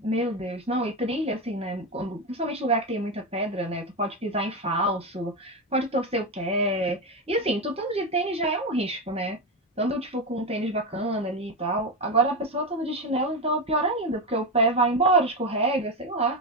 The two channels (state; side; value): normal; both; correlation 0.13